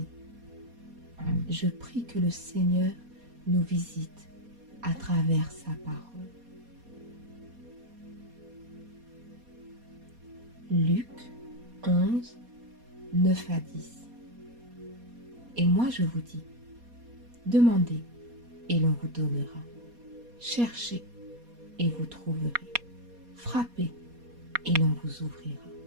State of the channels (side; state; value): left; late; 4.2 ms